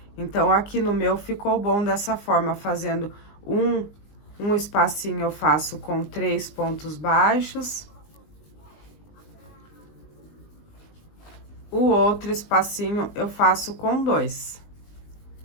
Então, aqui no meu ficou bom dessa forma, fazendo um espacinho eu faço com 3 pontos baixos. O outro espacinho eu faço com 2.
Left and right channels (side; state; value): right; late; 20 ms